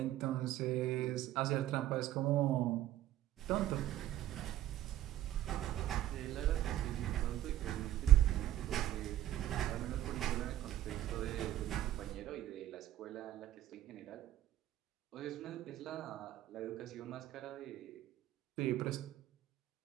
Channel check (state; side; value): quieter; left; 13.3 dB